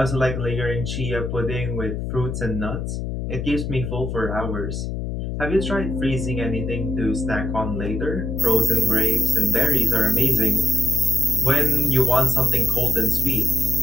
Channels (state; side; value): noise; left; hum, 4 dB below the sound